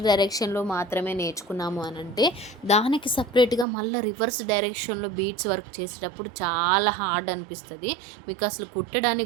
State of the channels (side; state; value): left; drops out; at 3.7 s